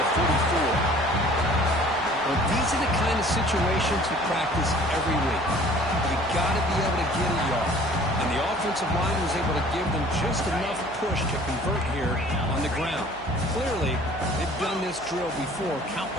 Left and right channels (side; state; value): right; noise; hum, 21 dB below the sound